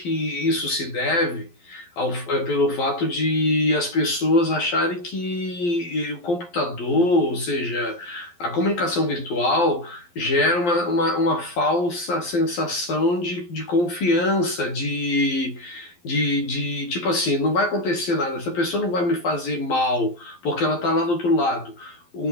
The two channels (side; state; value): right; late; 11 ms